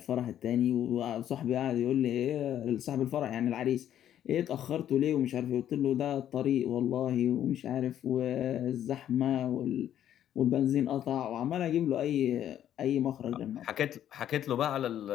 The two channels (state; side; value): quieter; right; 10.9 dB